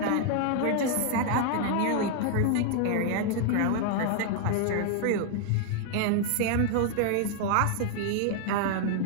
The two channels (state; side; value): different; both; correlation 0.00